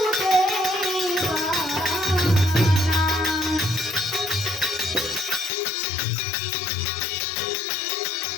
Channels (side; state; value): right; drops out; at 5.5 s